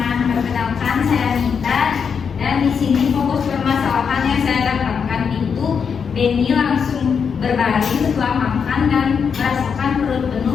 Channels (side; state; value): right; quieter; 6.5 dB